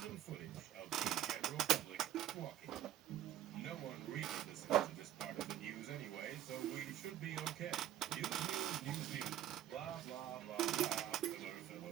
footage of the general public walking. No one really listens to this part of the news anyway, so we should be okay. News, news, news, news. Blah, blah, blah, blah. Filler,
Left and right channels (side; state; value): left; quieter; 11.8 dB